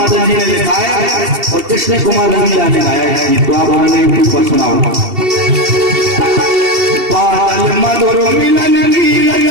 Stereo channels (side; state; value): left; late; 2.7 ms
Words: जी ने लिखाया और कृष्ण कुमार रंगीला ने गाया है गीत को, आप उन्होंने ऊपर सुनाओ। बादल मधुर मिलन की